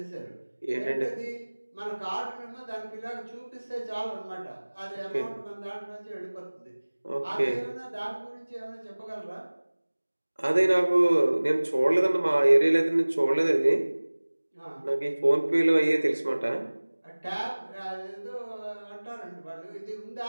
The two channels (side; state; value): both; inverted; correlation -1.00